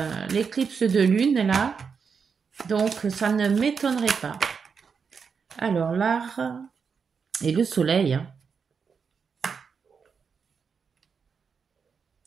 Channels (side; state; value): left; quieter; 5.9 dB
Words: l'éclipse de lune là, donc ça ne m'étonnerait pas. Alors l'art et le soleil. Hein.